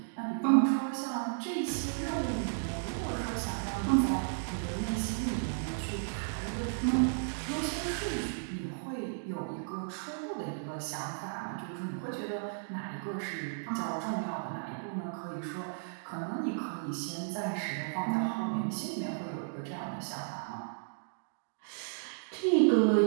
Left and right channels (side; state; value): left; silent; digital silence